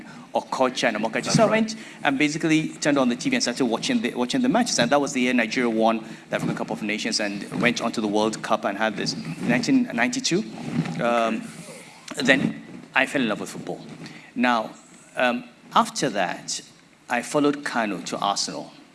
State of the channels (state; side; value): identical; both; correlation 1.00